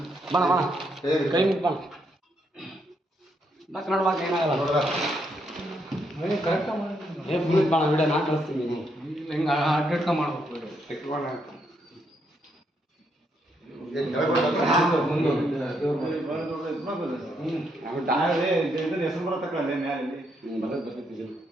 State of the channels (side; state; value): both; normal; correlation 0.76